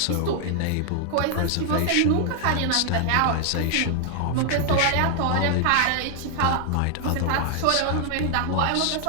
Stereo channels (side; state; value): both; different; correlation 0.00